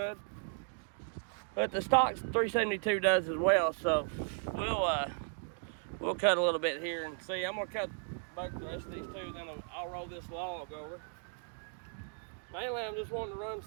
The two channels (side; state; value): left; silent; 54 dB below the other